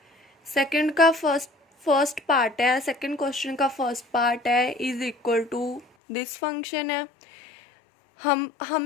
सेकंड का फर्स्ट पार्ट है, सेकंड क्वेश्चन का फर्स्ट पार्ट है is equal to this function है।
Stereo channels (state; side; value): drops out; right; at 5.9 s